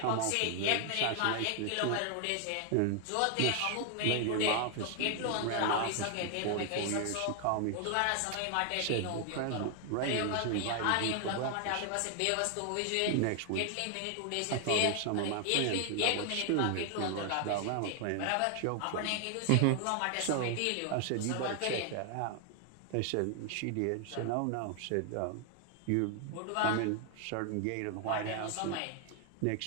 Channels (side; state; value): both; different; correlation 0.00